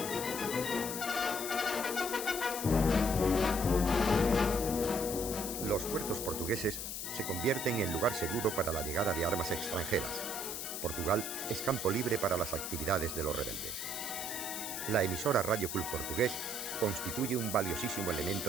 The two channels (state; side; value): noise; left; hiss, 5 dB below the sound